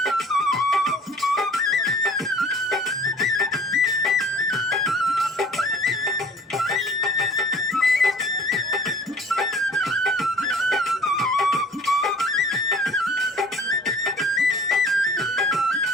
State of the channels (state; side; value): normal; both; correlation 0.49